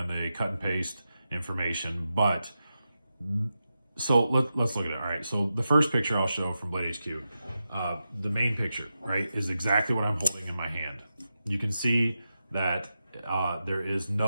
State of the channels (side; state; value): both; inverted; correlation -0.89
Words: They cut and paste information, but so let's look at it. All right, so the first picture I'll show from Blade HQ, the main picture, right, is exactly what I'm holding in my hand. You can see that there are